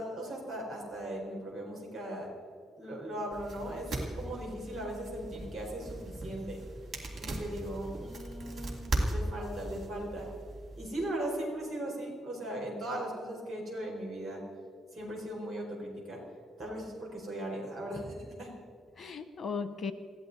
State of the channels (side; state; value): both; normal; correlation 0.75